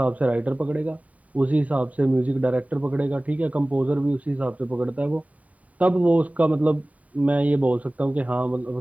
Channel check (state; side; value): late; left; 0.069 ms